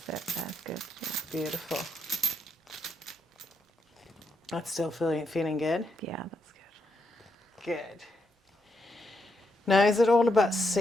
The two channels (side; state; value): both; normal; correlation 0.80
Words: it, that's good. Yeah. Beautiful. That's still feeling good? Yeah, that's good. Good. Now, is it all about